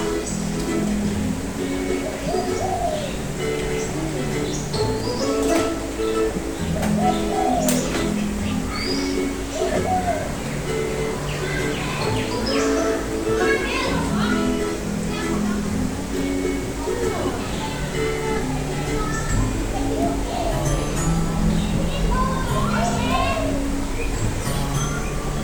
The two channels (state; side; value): identical; both; correlation 1.00